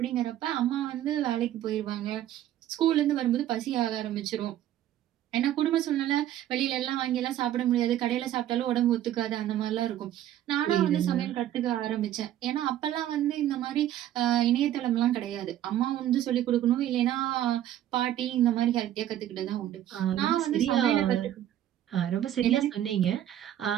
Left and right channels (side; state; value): left; quieter; 12.1 dB